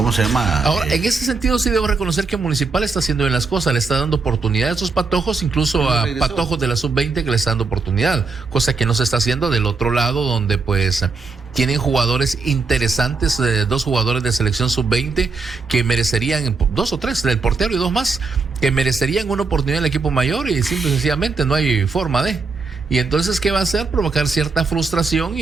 se llama? Ahora, en ese sentido sí debo reconocer que Municipal está haciendo bien las cosas, le está dando oportunidad a estos patojos, incluso a patojos de la sub-20 que le está dando oportunidad, cosa que no se está haciendo del otro lado, donde pues tienen jugadores interesantes, 2 jugadores de selección sub-20 que merecerían, 2 o 3, el portero y 2 más, que merecerían una oportunidad en el equipo mayor y simple y sencillamente no hay forma de. Y entonces, ¿qué va a hacer? Provocar cierta frustración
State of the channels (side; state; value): left; quieter; 4.3 dB